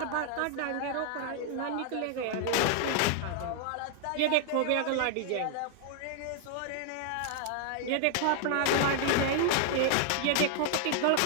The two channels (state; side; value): different; both; correlation 0.00